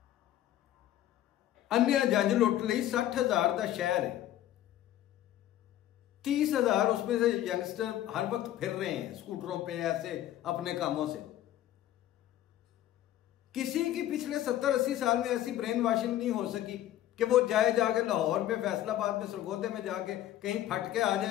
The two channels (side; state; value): right; quieter; 12.9 dB